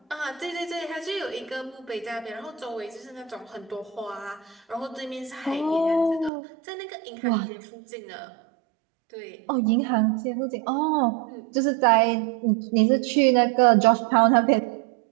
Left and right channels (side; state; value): left; drops out; at 6.3 s